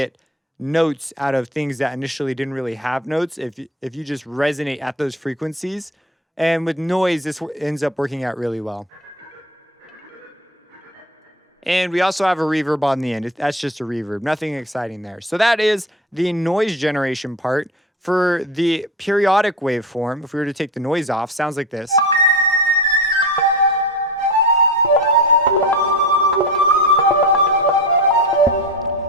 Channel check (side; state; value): both; normal; correlation 0.29